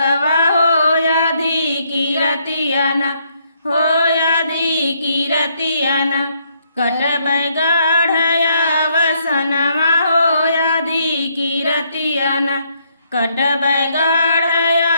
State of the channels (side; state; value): both; inverted; correlation -0.71